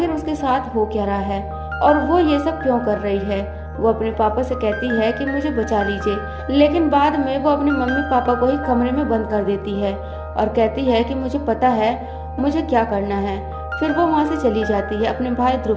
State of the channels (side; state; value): both; identical; correlation 1.00